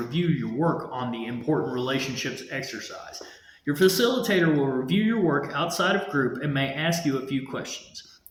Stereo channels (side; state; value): both; identical; correlation 1.00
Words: your work on the Important Relationships exercise. Your facilitator will review your work outside of group and may ask you a few questions.